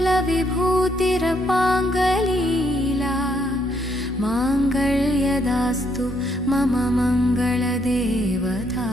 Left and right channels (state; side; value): normal; both; correlation 0.73